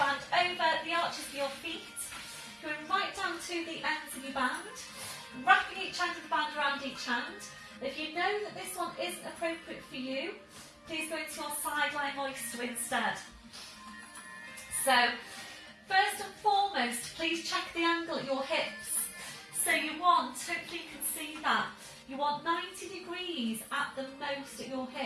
over the arches of your feet. Going right down to the ends of your band. Wrapping each end of the band around each hand. If you know that this one isn't appropriate for you, please go into your sideline oyster instead. So, first and foremost, please check the angle at your hips. So you want, hopefully you can see that, you want 90 degrees at the most at your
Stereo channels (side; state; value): both; identical; correlation 1.00